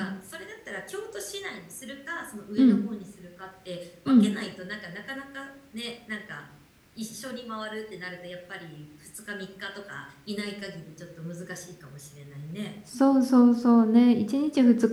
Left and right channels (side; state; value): both; identical; correlation 1.00